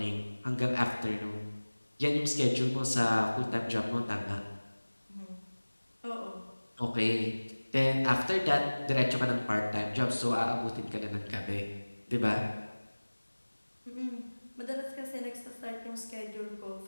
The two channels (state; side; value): inverted; both; correlation -1.00